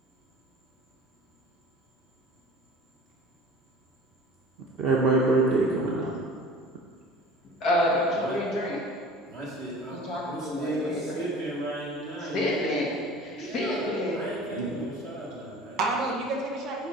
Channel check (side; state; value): both; normal; correlation 0.43